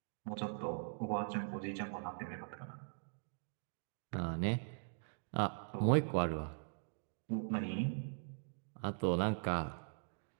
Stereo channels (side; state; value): left; silent; digital silence